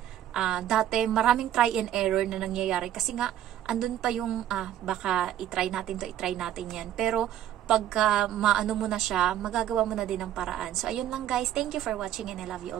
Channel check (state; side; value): quieter; left; 11.5 dB